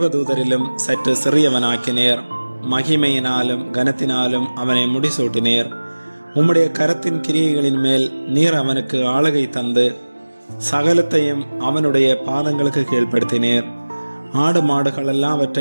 சற்று சிறியவனாக்கினீர். மகிமையினாலும் கனத்தினாலும் அவனை முடிசூட்டினீர். உம்முடைய கரத்தின் கிரியைகளின் மேல் நீர் அவனுக்கு ஆளுகை தந்து சகலத்தையும் அவனுடைய பாதங்களுக்கு கீழ்ப்படுத்தினீர். ஆடு மாடுகள்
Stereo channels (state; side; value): inverted; both; correlation -1.00